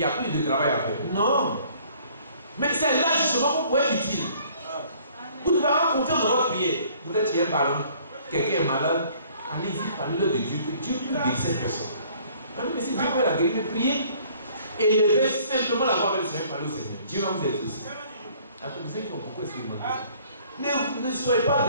a plus de travail à faire. Non. Mais c'est là justement qu'on pourrait être utile. Vous devez avoir confiance dans votre prière. Vous êtes chez un parent, quelqu'un est malade, allez-y, parlez-le de Dieu, que Dieu peut guérir cette personne. Mais si Dieu peut la guérir, priez. Élevez simplement la voix avec le Seigneur, parlez au Seigneur. Dieu va vous exaucer. Il y a ceux qui ont beaucoup expérimenté ça. Ne soyez pas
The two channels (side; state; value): both; inverted; correlation -0.57